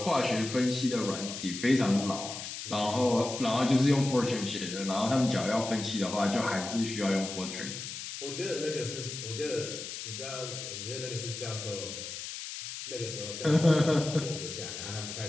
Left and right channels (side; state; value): left; noise; hiss, 8 dB below the sound